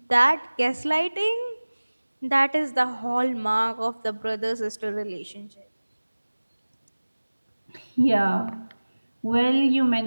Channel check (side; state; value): both; inverted; correlation -1.00